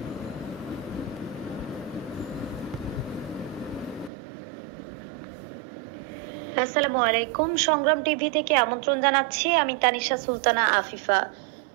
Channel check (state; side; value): drops out; left; at 4.1 s